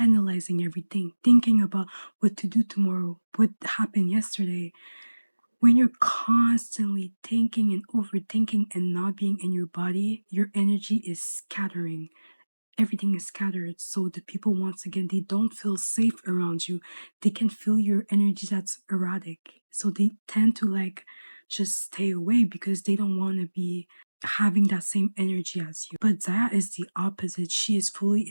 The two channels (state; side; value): inverted; both; correlation -1.00